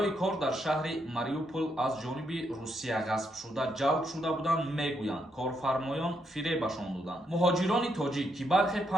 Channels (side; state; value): both; normal; correlation 0.78